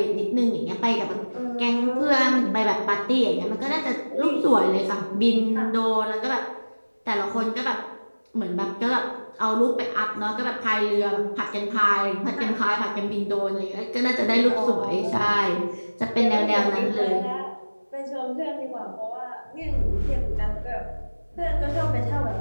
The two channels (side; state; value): both; inverted; correlation -1.00